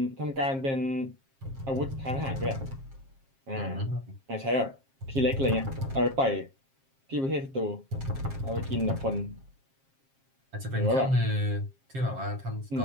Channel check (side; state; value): left; late; 7.5 ms